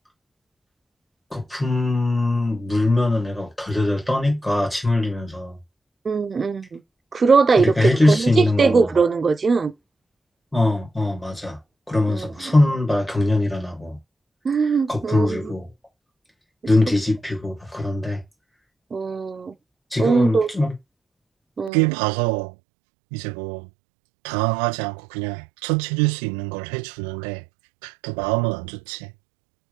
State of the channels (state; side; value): drops out; left; at 21.7 s